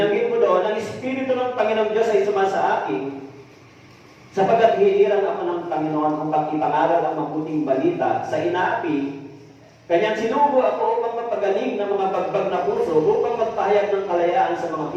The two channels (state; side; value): identical; both; correlation 1.00